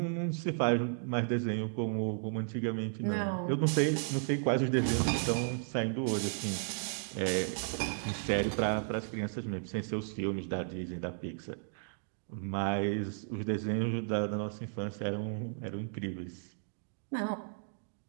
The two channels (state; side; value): silent; left; digital silence